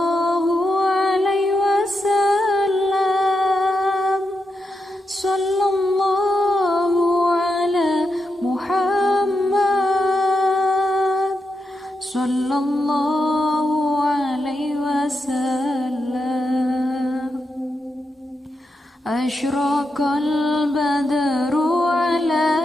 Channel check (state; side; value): normal; both; correlation 0.86